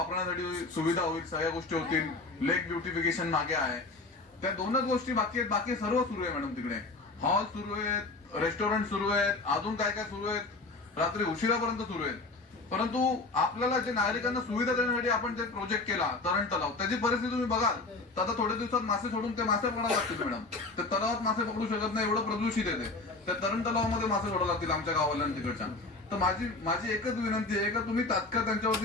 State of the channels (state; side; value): quieter; right; 3.4 dB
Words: सुविधा होईल, सगळ्या गोष्टी होतील. लेक ब्युटिफिकेशन मागे आहे. त्या 2च गोष्टी बाकी आहेत. बाकी सर्व सुरू आहे मॅडम. तिकडे हॉल सुरू आहेत, रेस्टॉरंट सुरू आहेत, अजून काय काय सुरू आहेत, रात्री उशिरापर्यंत सुरू आहेत. परंतु आपल्याला जे नागरिकांना सुविधा देण्यासाठी आपण जे प्रोजेक्ट केला तरण तलाव त्याची परिस्थिती तुम्ही बघाल तर आता थोड्या दिवसात मासे सोडून ते मासे पकडायला लागतील मॅडम. ते तलावात मासे पकडू शकत नाही, एवढं प्रदूषित येते. त्या तरण तलावामध्ये मासे सोडायला लागतील आमच्या गावाला तिकडच्या. तर माझी एकच विनंती आहे की तुम्ही तात्काळ त्यांच्यावरती